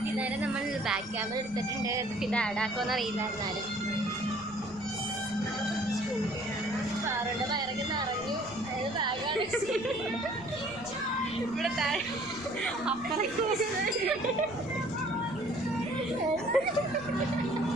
ഇതായാലും നമ്മൾ ബാക്ക് ക്യാമറ എടുത്തിട്ടുണ്ട്. ഇത് ആഡാക്കുമെന്ന് അറിയില്ല. എന്നാലും കാറിൻ്റെ വയറൊക്കെ നിറഞ്ഞു. അതായത് ബാഗാണ് ഇവിടെ താഴെ അപ്പുറം.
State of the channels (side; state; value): right; noise; rumble, 20 dB below the sound